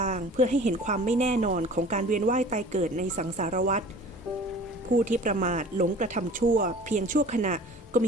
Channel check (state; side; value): normal; both; correlation 0.45